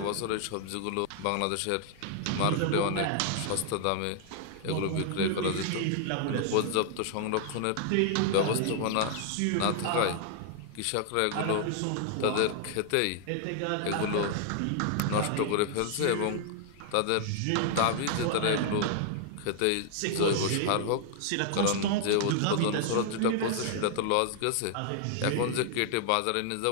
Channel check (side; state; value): both; different; correlation 0.00